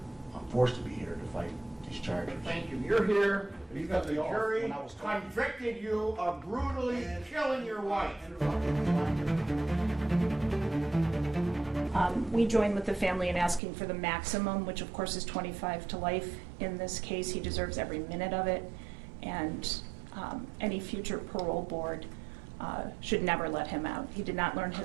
I'm forced to be here to fight these charges. Thank you. You're here because the jury convicted you of brutally killing your wife. We join with the family in asking for the maximum, which of course is 25 to life. In this case, he deserves every minute of it, and any future parole board should never let him out. He did not learn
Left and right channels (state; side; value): drops out; left; at 13.6 s